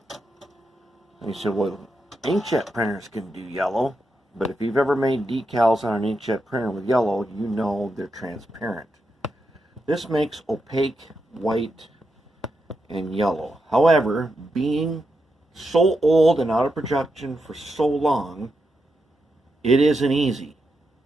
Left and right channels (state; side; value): normal; both; correlation 0.85